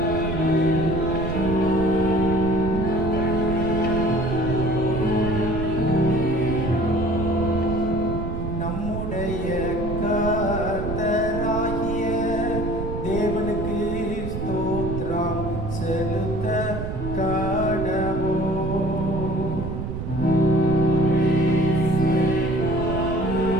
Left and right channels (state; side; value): noise; right; rumble, 5 dB below the sound